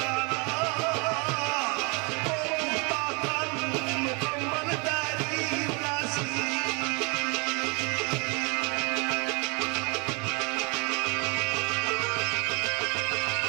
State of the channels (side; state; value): left; quieter; 31.7 dB